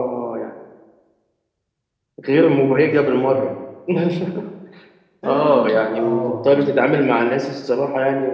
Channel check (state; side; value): identical; both; correlation 1.00